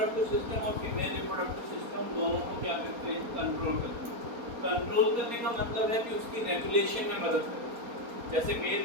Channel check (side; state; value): left; late; 4.3 ms